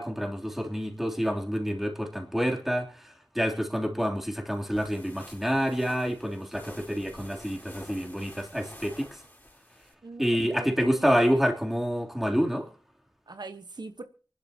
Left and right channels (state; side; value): normal; both; correlation 0.96